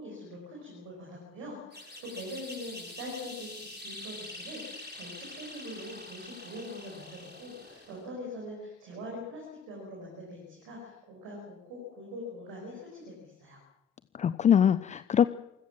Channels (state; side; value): quieter; right; 7.0 dB